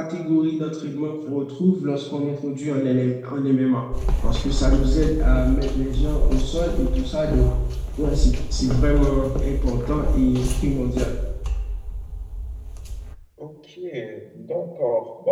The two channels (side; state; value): both; identical; correlation 1.00